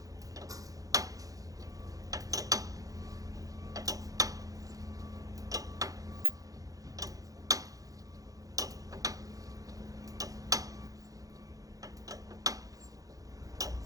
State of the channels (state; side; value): late; left; 0.17 ms